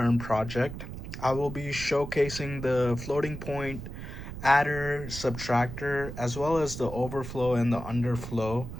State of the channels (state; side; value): noise; right; rumble, 9 dB below the sound